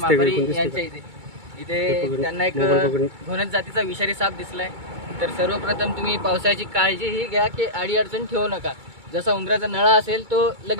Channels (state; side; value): late; left; 2.2 ms